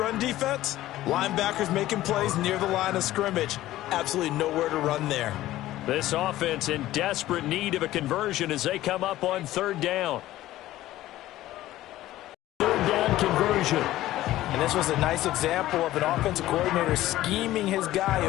defense, linebackers making plays near the line of scrimmage. Absolutely nowhere to run there. This offense in desperate need of a conversion as they come up on third down. Third down conversion. And this was a nice example of an offensive coordinator scheming his guy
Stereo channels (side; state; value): right; quieter; 15.1 dB